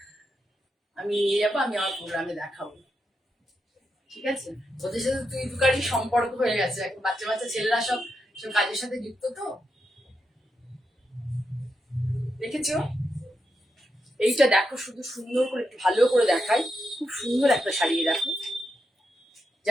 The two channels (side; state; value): both; normal; correlation 0.85